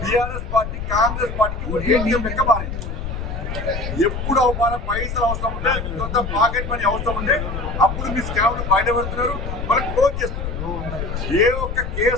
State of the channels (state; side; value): noise; left; rumble, 5 dB below the sound